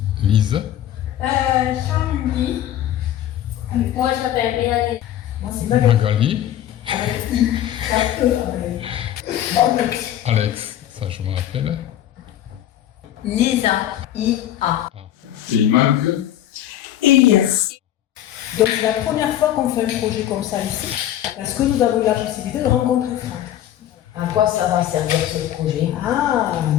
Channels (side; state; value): right; quieter; 11.8 dB